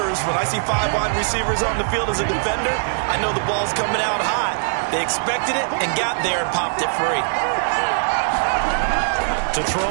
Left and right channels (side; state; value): left; silent; 65 dB below the other